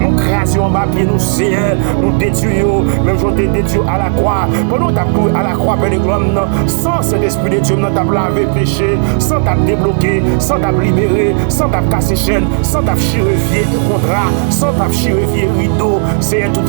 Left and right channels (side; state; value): left; silent; 59 dB below the other